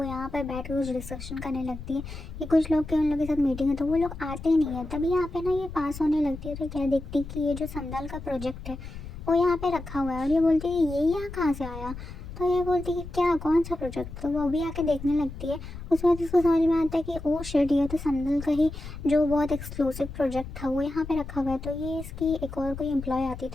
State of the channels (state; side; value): noise; left; rumble, 11 dB below the sound